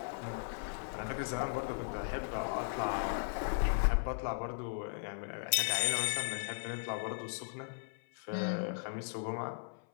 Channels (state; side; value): silent; right; 53 dB below the other